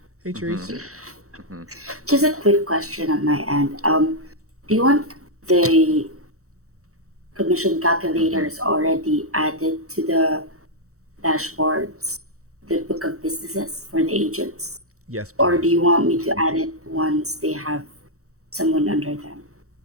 Hey, Therese. Mhm. Mhm. just a quick question on my end. Do you want the commission calculators already added to the dashboards, the book of businesses for the agents? Yes, Or do please. you want me to add it once they have someone under them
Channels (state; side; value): late; left; 0.64 ms